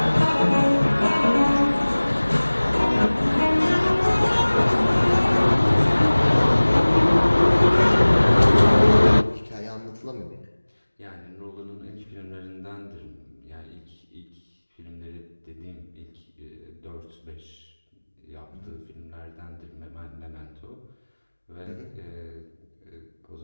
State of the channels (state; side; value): inverted; both; correlation -1.00